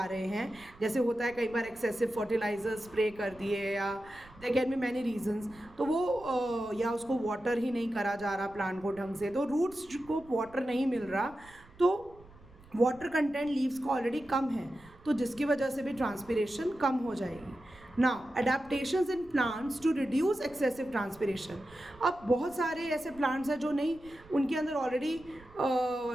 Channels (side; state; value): right; noise; rumble, 24 dB below the sound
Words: रहे हैं, जैसे होता है कई बार एक्सेसिव फर्टिलाइजर स्प्रे कर दिए या there can be many reasons, तो वो या उसको वाटर ही नहीं करा जा रहा प्लांट को ढंग से, तो रूट्स को वाटर नहीं मिल रहा, तो वाटर कंटेंट लीव्स का ऑलरेडी कम है तो जिसकी वजह से भी ट्रांसपिरेशन कम हो जाएगी. Now adaptations in plants to reduce excessive transpiration. अब बहुत सारे ऐसे प्लांट्स हैं जो नहीं, उनके अंदर ऑलरेडी